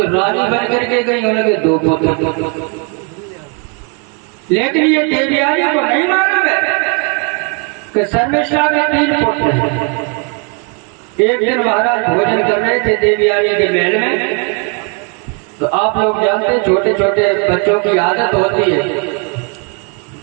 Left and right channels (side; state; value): left; quieter; 35.0 dB